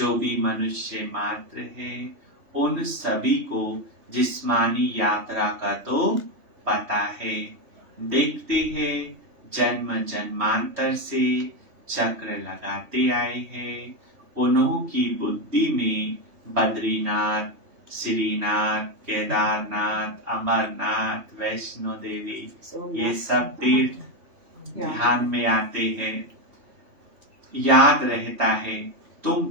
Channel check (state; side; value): late; left; 3.1 ms